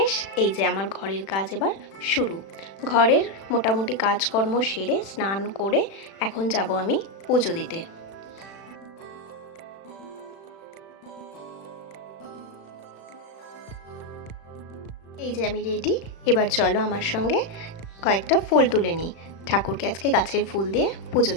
এই যে আমার ঘরের কাজ এবার শুরু। ঘরের মোটামুটি কাজকর্ম সেরে স্নান করে এখন যাব আমি পুজো দিতে। এই যে আমি রেডি, এবার চলো আমার সঙ্গে কয়েকটা ফুল তুলে নিই। ঠাকুরকে আজকে গাছের ফুল দিয়ে পুজো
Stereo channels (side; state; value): right; late; 36 ms